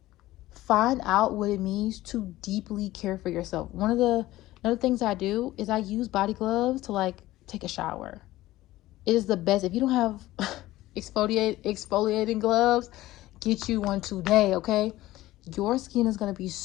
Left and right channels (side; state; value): right; quieter; 16.5 dB